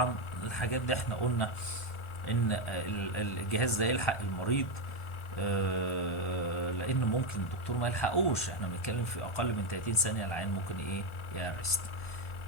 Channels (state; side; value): late; right; 1.4 ms